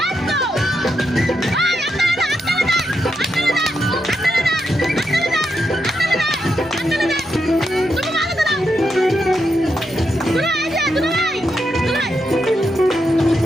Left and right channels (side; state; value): both; normal; correlation 0.84